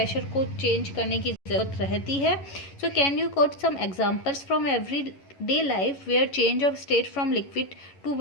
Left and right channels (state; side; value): late; right; 11 ms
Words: को चेंज करने की ज़रूरत रहती है? So can you quote some examples from every day life where change of state from liquid to